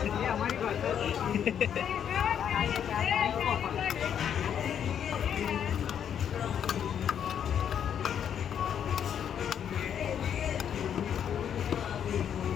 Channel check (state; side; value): quieter; right; 8.8 dB